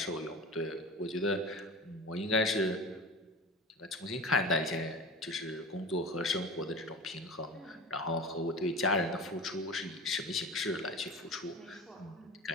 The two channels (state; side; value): normal; both; correlation 0.33